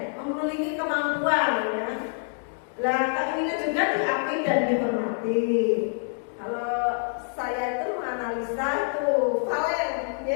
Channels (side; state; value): right; silent; digital silence